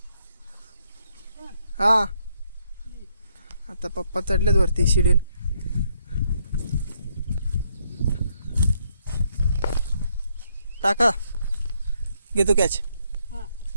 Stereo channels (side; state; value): both; inverted; correlation -0.74